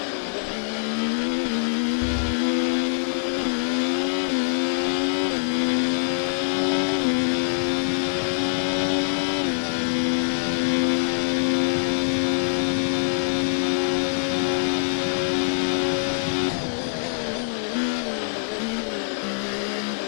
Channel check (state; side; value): silent; right; digital silence